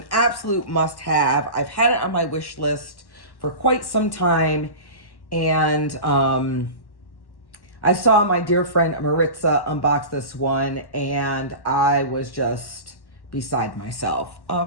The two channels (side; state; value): right; late; 1.1 ms